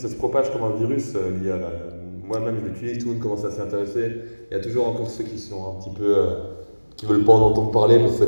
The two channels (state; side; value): inverted; both; correlation -1.00